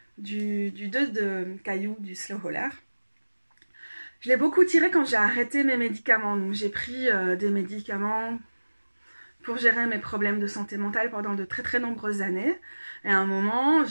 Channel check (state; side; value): inverted; both; correlation -1.00